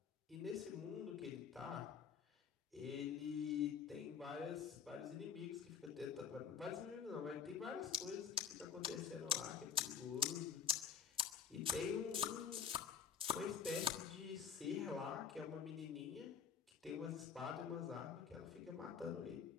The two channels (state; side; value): quieter; right; 7.4 dB